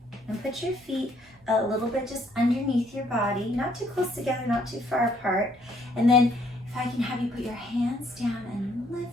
and put your feet a little bit just underneath your body, not too close together, not too far apart. And then if I can have you put your hands down and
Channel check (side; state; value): both; normal; correlation 0.66